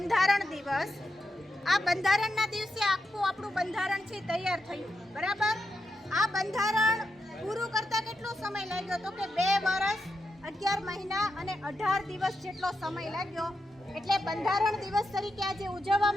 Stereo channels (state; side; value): normal; both; correlation 0.86